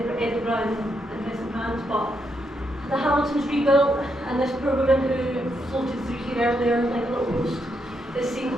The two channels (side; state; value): both; normal; correlation 0.80